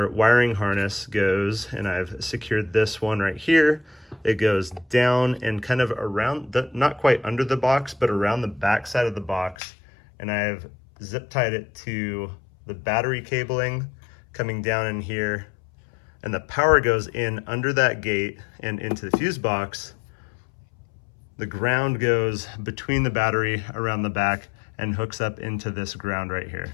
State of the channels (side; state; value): right; drops out; at 9.6 s